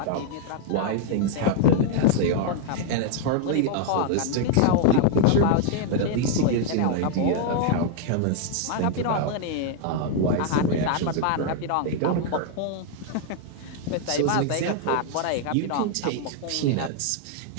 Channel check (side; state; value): both; different; correlation 0.00